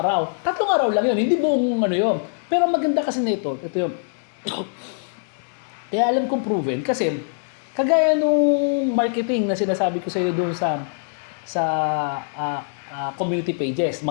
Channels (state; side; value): silent; right; digital silence